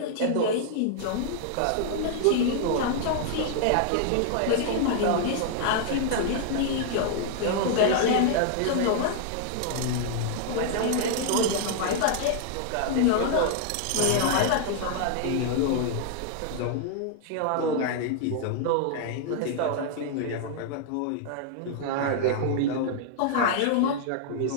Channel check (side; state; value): both; different; correlation -0.01